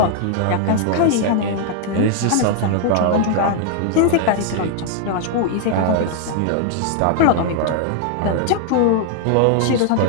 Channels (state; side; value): different; both; correlation 0.00